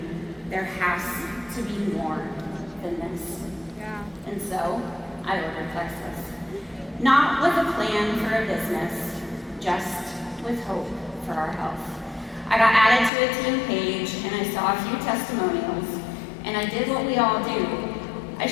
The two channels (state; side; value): drops out; right; at 13.1 s